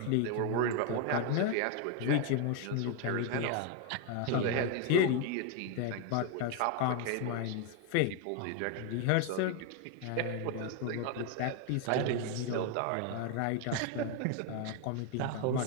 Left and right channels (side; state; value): both; different; correlation 0.01